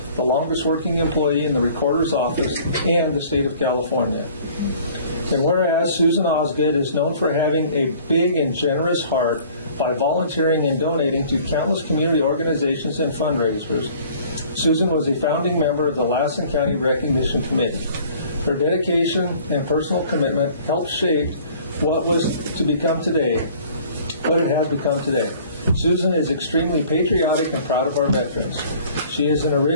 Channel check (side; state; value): both; inverted; correlation -0.52